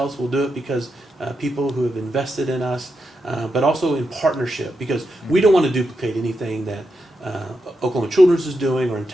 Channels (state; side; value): normal; both; correlation 0.86